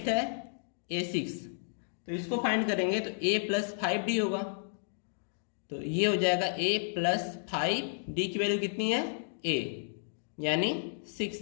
है a6, तो इसको फाइंड करेंगे तो a प्लस 5d होगा, तो ये हो जाएगा a प्लस 5d की वैल्यू कितनी है a यानी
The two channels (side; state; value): right; silent; digital silence